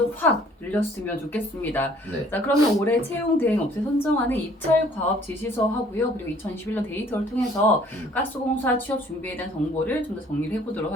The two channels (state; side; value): normal; both; correlation 0.57